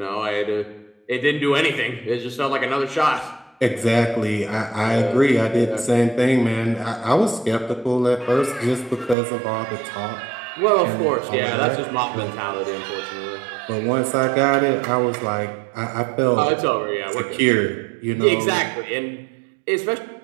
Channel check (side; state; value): left; drops out; at 9.2 s